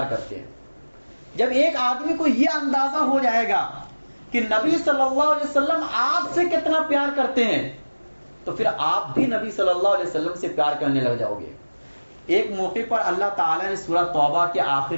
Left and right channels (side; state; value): both; inverted; correlation -1.00